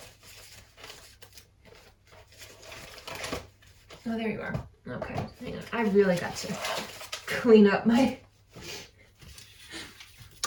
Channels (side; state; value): both; identical; correlation 1.00